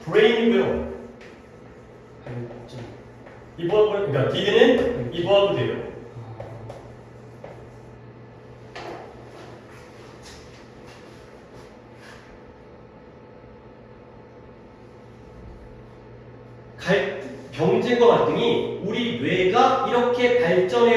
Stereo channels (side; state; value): both; identical; correlation 1.00